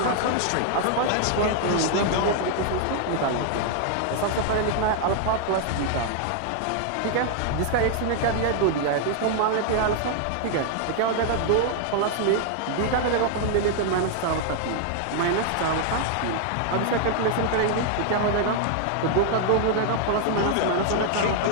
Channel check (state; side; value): different; both; correlation 0.00